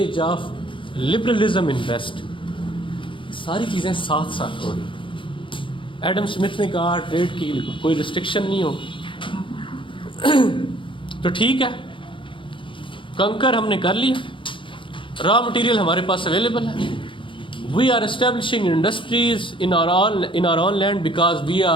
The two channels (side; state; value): right; late; 0.25 ms